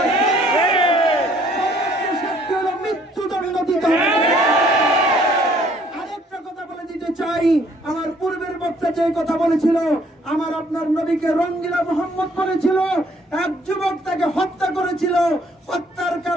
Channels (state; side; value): normal; both; correlation 0.62